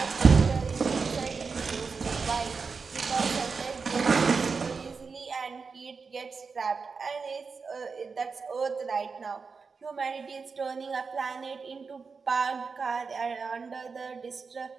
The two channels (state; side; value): quieter; left; 5.0 dB